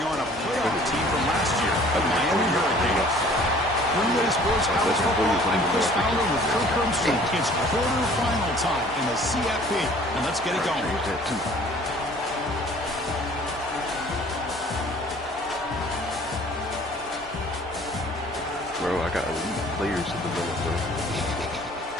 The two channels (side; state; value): both; normal; correlation 0.52